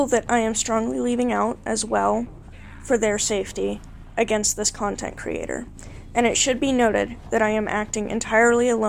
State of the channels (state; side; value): identical; both; correlation 1.00